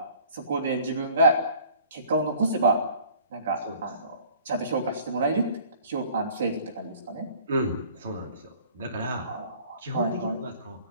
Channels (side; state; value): both; inverted; correlation -0.52